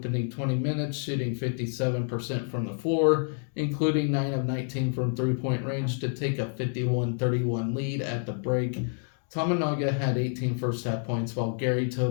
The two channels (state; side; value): silent; right; 59 dB below the other